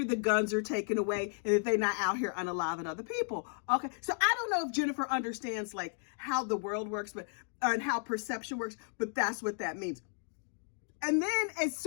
the guns are taken away and that they're not out here unaliving other people. Okay, so I don't know if Jennifer understands like how the world works, but and how perception works, but that's what that means. And then as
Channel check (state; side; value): silent; right; 55 dB below the other